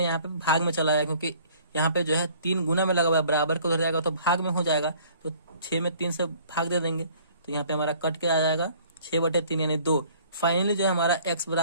यहाँ पे भाग में चला जाएगा क्योंकि यहाँ पे जो है 3 गुना में लगा हुआ है, बराबर को उधर जाएगा तो भाग में हो जाएगा, तो 6 में 3 से भाग दे देंगे, तो यहाँ पे हमारा कट के आ जाएगा 6 बटे 3 यानी 2। फाइनली जो है हमारा x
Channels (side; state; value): both; inverted; correlation -0.54